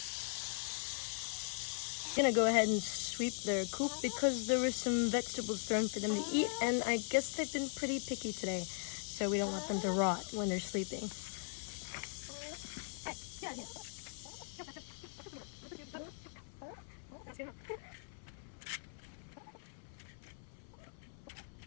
I'm gonna go ahead and sweep their coop because there were some vegetables thrown for them to eat, and I guess they've been pretty picky today, so we don't want them to rot when they're sleeping.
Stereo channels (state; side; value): silent; right; 51 dB below the other